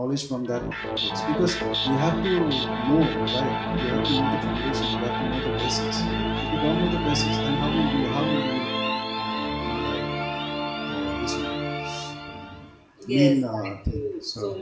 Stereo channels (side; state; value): both; identical; correlation 1.00